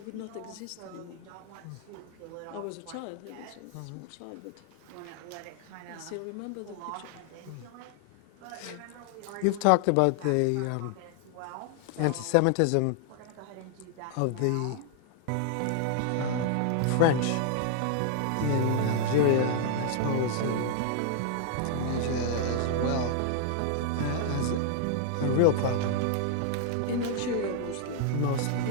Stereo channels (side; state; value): both; different; correlation 0.00